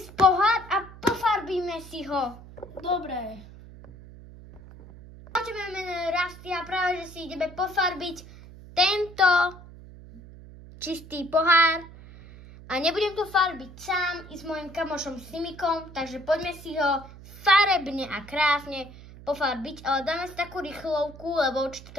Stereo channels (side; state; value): right; noise; hum, 18 dB below the sound